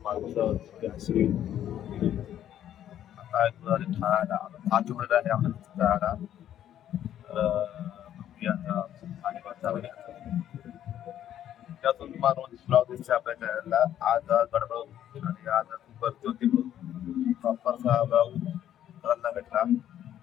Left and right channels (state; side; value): quieter; right; 11.0 dB